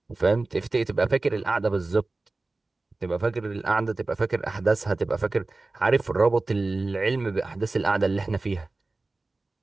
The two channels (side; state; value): left; quieter; 3.3 dB